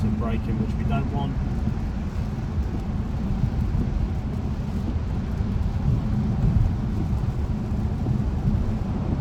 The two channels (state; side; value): identical; both; correlation 1.00